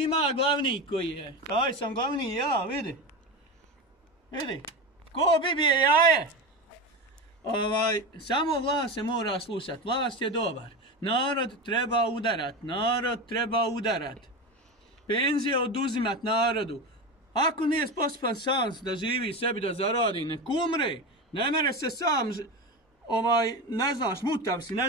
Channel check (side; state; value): both; normal; correlation 0.22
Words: ima glavni koji je. Taj sam glavni ja, vidi. Vidi, ko bibije jaje. Samo vlast se mora slušat, vlast je dobar. Narod treba udarat. Penzije oduzimat narodu. Ako nije sposoban sam da živi sebi da zaradi, nek umre. Ne mere se sam, ne znaš, mutav si, ne